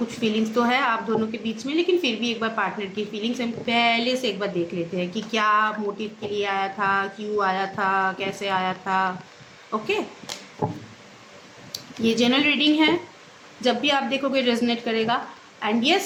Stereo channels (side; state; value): both; identical; correlation 1.00